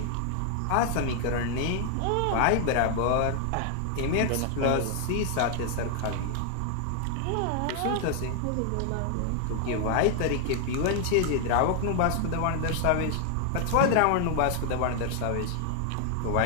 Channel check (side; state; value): both; different; correlation 0.00